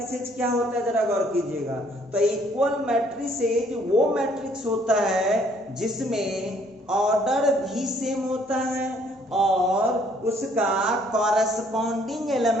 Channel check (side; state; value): both; normal; correlation 0.63